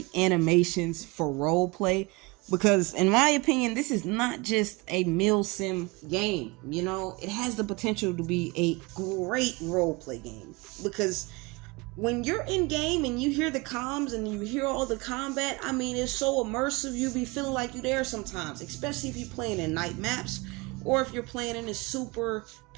animations for roleplay, because in my opinion, this is not just a mil sim game. You know, it has the potential to be a great roleplay game, because when you're in game and you hear the comms and you hear all the combat, I mean, it's so immersive. You be feeling like you're there sometimes, especially if you're playing in night maps or if you're playing in a super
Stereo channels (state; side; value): quieter; left; 25.4 dB